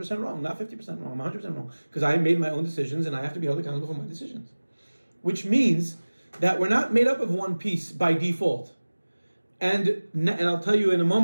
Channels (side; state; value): both; inverted; correlation -1.00